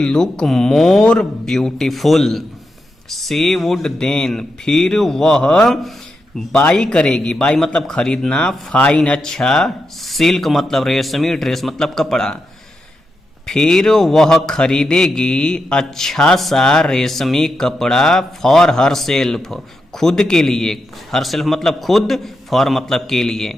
look more beautiful. She would then फिर वह बाई करेगी, बाई मतलब खरीदना, फाइन अच्छा, सिल्क मतलब रेशमी, ड्रेस मतलब कपड़ा, फिर वह खरीदेगी अच्छा सा रेशमी कपड़ा फॉर हर सेल्फ खुद के लिए, हर सेल्फ मतलब खुद, फॉर मतलब के लिए,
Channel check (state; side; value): normal; both; correlation 0.86